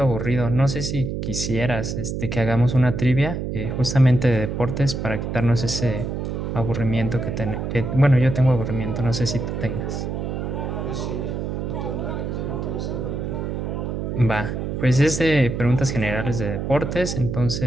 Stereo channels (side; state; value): right; noise; hum, 3 dB below the sound